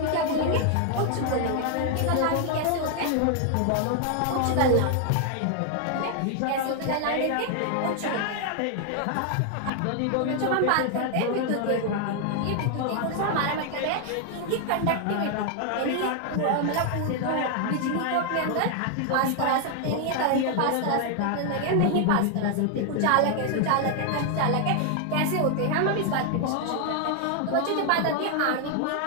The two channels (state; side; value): different; both; correlation 0.00